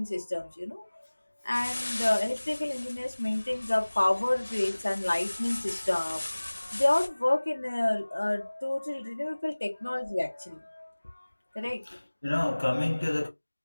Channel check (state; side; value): inverted; both; correlation -1.00